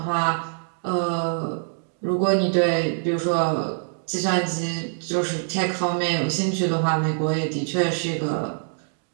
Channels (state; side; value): silent; left; digital silence